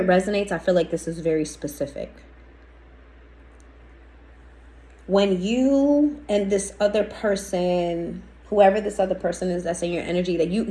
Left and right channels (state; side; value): identical; both; correlation 1.00